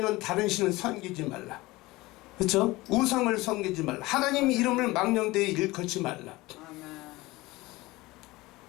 다른 신을 섬기지 말라. 그렇죠? 우상을 섬기지 말라. 하나님 이름을 망령되이 일컬지 말라.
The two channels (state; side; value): quieter; right; 20.4 dB